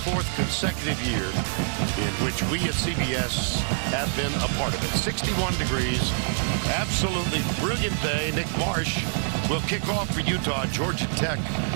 consecutive year in which we at CBS have been a part of it. 61 degrees, absolutely brilliant day. Nick Marsh will kick off for Utah. Georgia Tech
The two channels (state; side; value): silent; left; digital silence